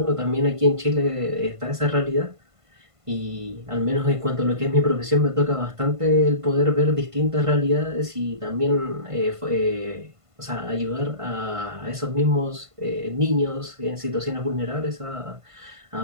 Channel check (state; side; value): late; left; 1.5 ms